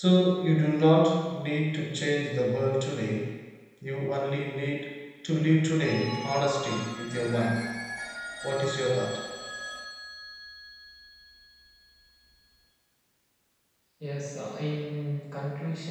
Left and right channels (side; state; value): both; identical; correlation 1.00